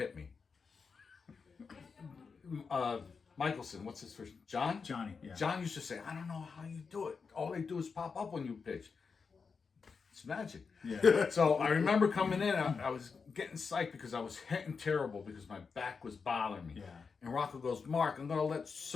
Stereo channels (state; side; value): quieter; right; 5.3 dB